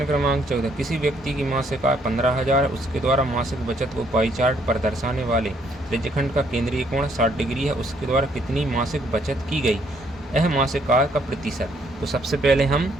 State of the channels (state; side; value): normal; both; correlation 0.68